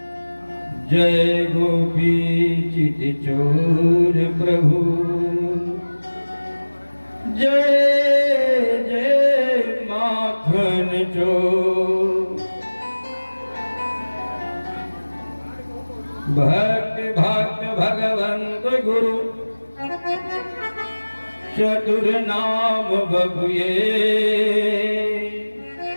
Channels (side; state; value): both; inverted; correlation -1.00